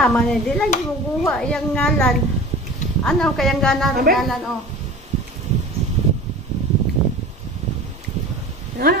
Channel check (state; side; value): normal; both; correlation 0.38